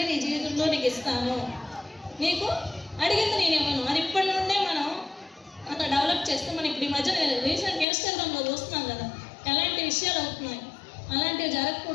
నీ జీవితంలో నీకు ఇస్తాను, నీకు అడిగింది నేను ఇవ్వను. అది ఇప్పటి నుండే మనం అంత డెవలప్ చేస్తే, మనం ఇప్పుడు ఈ మధ్య రీసెంట్ ఇన్స్టాగ్రామ్లో చూస్తున్నాం కదా ఎలాంటి విషయాలు అవుతున్నాయి, అలాంటివి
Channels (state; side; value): drops out; right; at 7.9 s